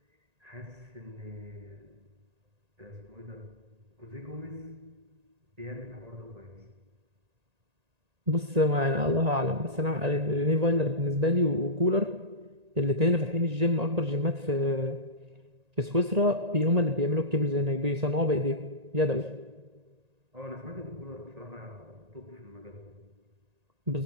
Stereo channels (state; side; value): late; left; 1.8 ms